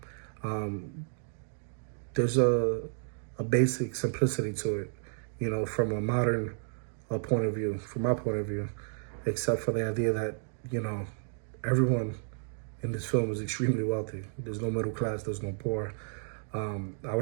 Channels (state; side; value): silent; left; 57 dB below the other